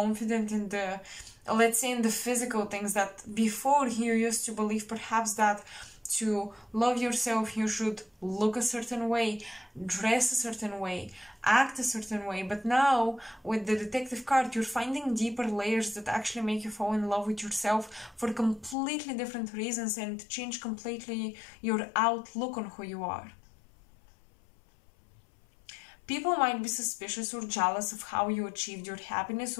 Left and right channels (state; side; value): drops out; right; at 18.8 s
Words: in the, let's say, in the physical things that before you used to believe perhaps that to love yourself you should look a certain way, dress a certain way, act a certain way. But now with the detective card, you're finding deeper layers that actually make you fall in love with yourself for completely different reasons and change completely your outlook on who you are. People might be suspicious or jealous of how you achieved your happiness,